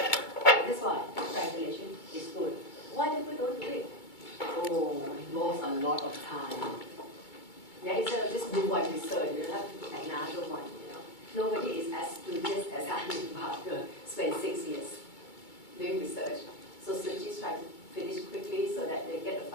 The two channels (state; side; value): late; right; 2.2 ms